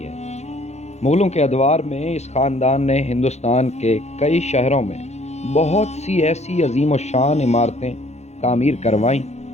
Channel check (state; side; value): late; right; 0.32 ms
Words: ہے۔ مغلوں کے ادوار میں اس خاندان نے ہندوستان کے کئی شہروں میں بہت سی ایسی عظیم و شان عمارتیں تعمیر کروائیں